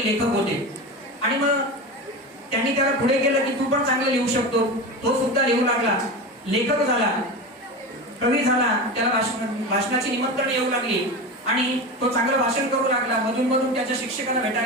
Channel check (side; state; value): both; normal; correlation 0.25